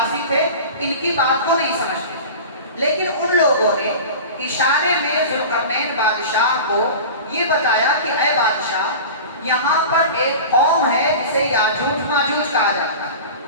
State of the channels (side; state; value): both; inverted; correlation -0.34